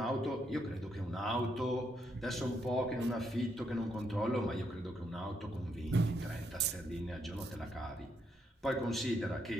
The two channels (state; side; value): normal; both; correlation 0.77